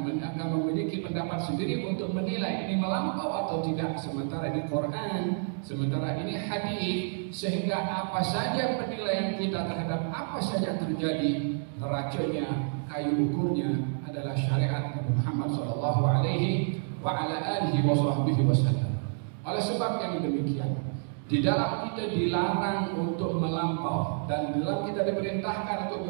memiliki pendapat sendiri untuk menilai ini melampau atau tidak. Sementara ini Quran, sementara ini hadis, sehingga apa saja penilaian kita terhadap apa saja terjadi, neraconya, kayu ukurnya adalah syariat Nabi Muhammad sallallahu alaihi wa ala alihi wasallam. Oleh sebab yang demikian, di dalam kita dilarang untuk melampau dan di dalam kita diperintahkan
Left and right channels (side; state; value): left; silent; digital silence